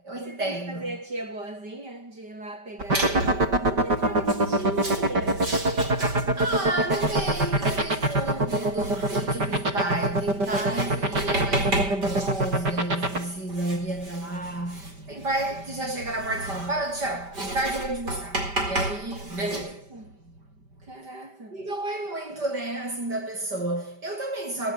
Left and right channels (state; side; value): late; left; 5.1 ms